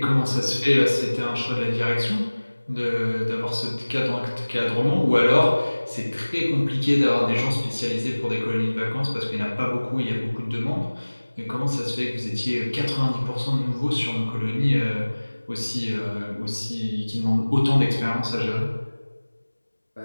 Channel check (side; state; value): both; inverted; correlation -1.00